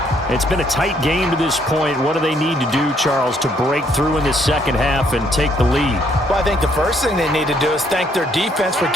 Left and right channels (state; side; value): normal; both; correlation 0.68